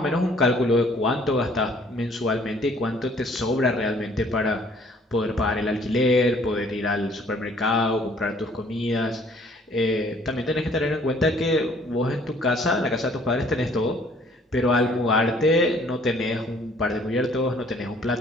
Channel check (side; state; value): both; normal; correlation 0.59